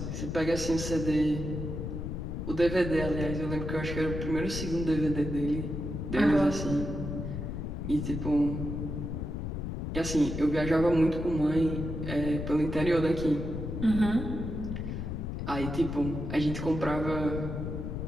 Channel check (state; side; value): noise; left; rumble, 4 dB below the sound